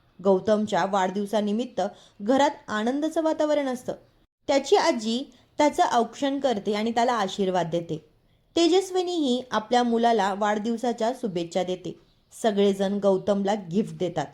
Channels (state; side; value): identical; both; correlation 1.00